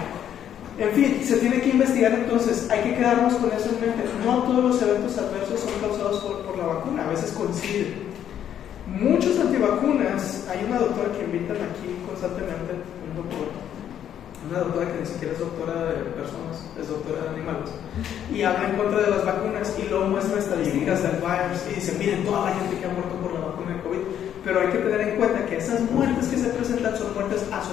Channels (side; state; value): right; quieter; 10.0 dB